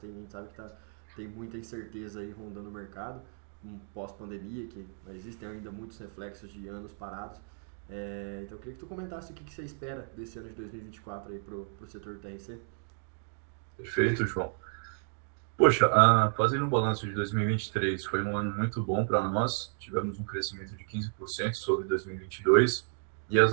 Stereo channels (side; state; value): left; silent; 56 dB below the other